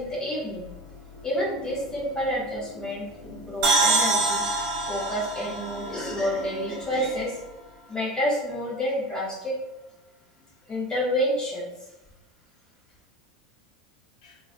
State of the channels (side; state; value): both; normal; correlation 0.32